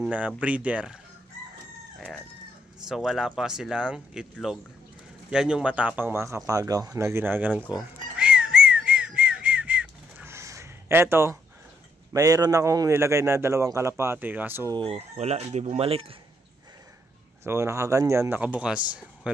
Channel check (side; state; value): both; normal; correlation 0.74